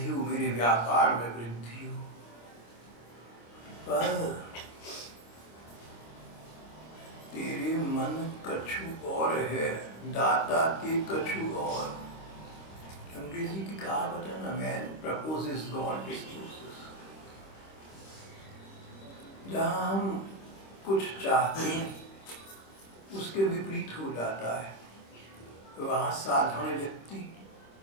हो, मेरे व्यापार में वृद्धि हो। पर तेरे मन कछु और है, दाता के कछु और। अंग्रेजी की कहावत है ना, मैन प्रपोजेस गॉड डिस्पोजेस। जहाँ हम कुछ चाहते हैं उसके विपरीत हो जाता है। वहाँ साधारण व्यक्ति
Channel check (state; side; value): late; right; 26 ms